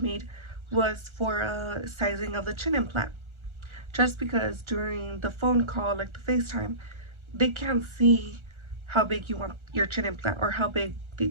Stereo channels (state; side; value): late; left; 1.4 ms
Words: was for a sizing of the chin implant, just because during the phone call, like the FaceTime, they can't see how big you want your chin implant or how big they